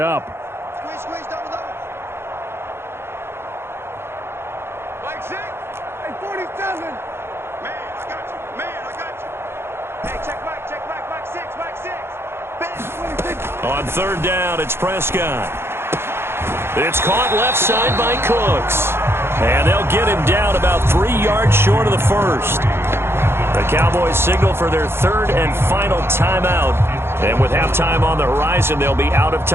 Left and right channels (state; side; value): late; left; 0.12 ms